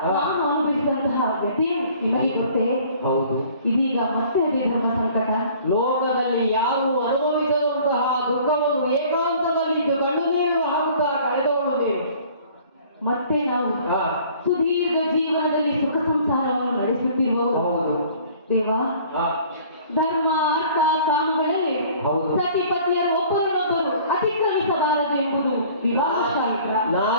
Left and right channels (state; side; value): inverted; both; correlation -0.52